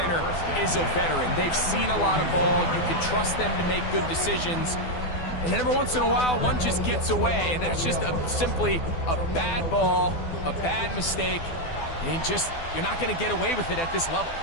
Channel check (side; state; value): right; late; 12 ms